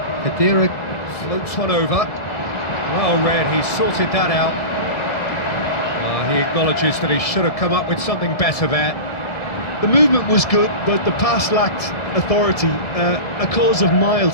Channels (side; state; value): right; late; 1.7 ms